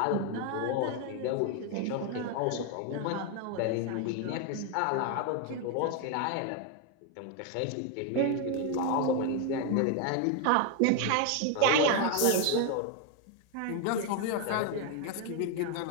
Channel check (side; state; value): both; different; correlation 0.01